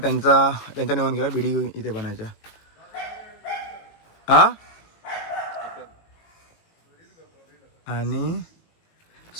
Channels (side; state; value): right; late; 18 ms